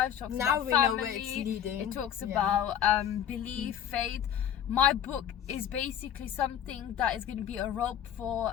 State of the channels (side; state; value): right; quieter; 9.6 dB